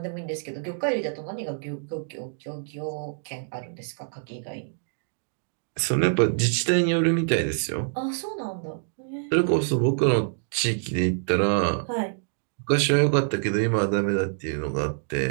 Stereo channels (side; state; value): left; silent; digital silence